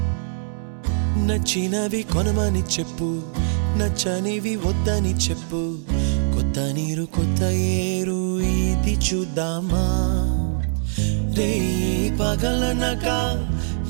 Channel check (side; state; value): left; silent; digital silence